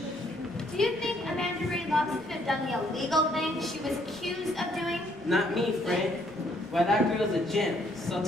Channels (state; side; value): normal; both; correlation 0.67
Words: Do you think Amanda Ray Locks could have done the illegal thing she was accused of doing? Not me, friend. Why, that girl's a gem, salt